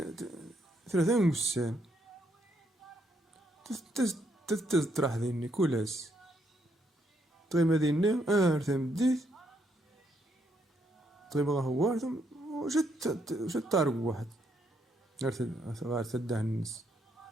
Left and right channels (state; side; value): normal; both; correlation 0.75